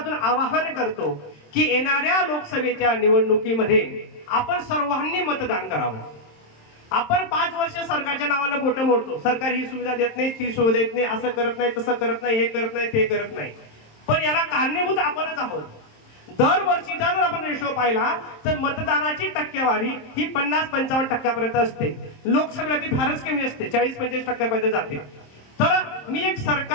आवाहन करतो की येणाऱ्या लोकसभेच्या निवडणुकीमध्ये आपण सर्वांनी मतदान करावं। आपण 5 वर्ष सरकारच्या नावानं बोटं मोडतो, सरकार ही सुविधा देत नाही, ती सुविधा देत नाही, असं करत नाही, तसं करत नाही, हे करत नाही, ते करत नाही, पण याला कारणीभूत आपणच आहोत। दरवर्षीचा जर आपण रेशो पाहिला तर मतदानाची टक्केवारी ही 50-55% असते, लोकसभेला ती फारच कमी असते, 40-45% जाते। तर मी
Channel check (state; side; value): late; right; 27 ms